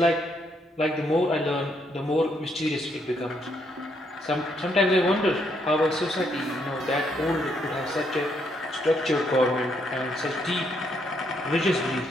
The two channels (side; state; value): both; normal; correlation 0.74